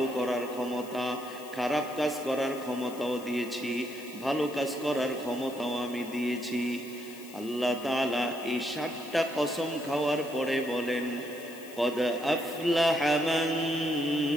করার ক্ষমতা। খারাপ কাজ করার ক্ষমতাও দিয়েছি, ভালো কাজ করার ক্ষমতাও আমি দিয়েছি। আল্লাহ তাআলা এই 7টা কসম খাওয়ার পরে বলেন, কদ আফলাহা মান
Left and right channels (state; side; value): noise; left; hiss, 19 dB below the sound